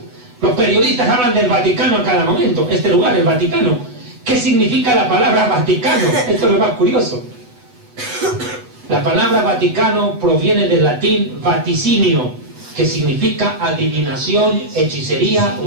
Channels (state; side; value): late; left; 8.0 ms